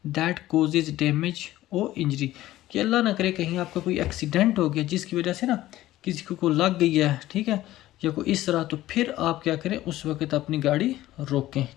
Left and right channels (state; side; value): quieter; right; 15.2 dB